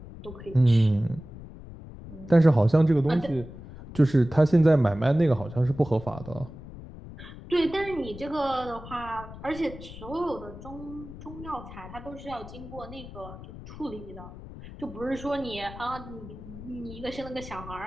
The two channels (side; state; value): left; noise; rumble, 14 dB below the sound